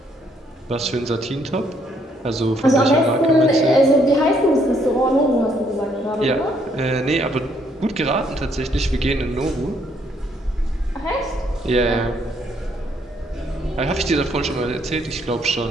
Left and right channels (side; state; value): both; normal; correlation 0.69